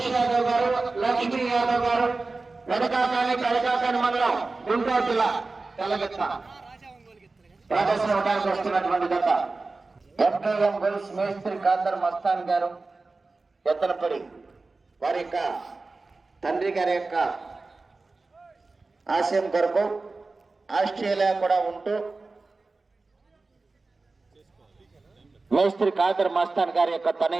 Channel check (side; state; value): left; quieter; 3.6 dB